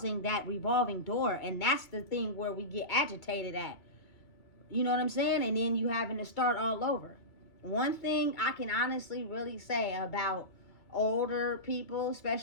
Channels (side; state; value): right; late; 2.3 ms